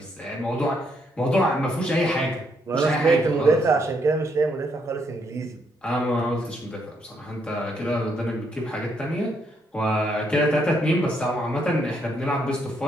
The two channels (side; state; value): both; normal; correlation 0.74